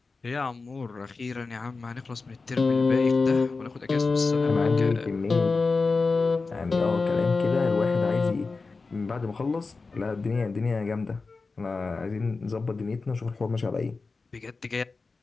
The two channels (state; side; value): quieter; right; 4.1 dB